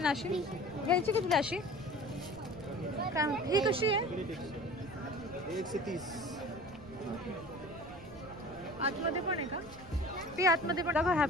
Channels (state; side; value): noise; right; rumble, 19 dB below the sound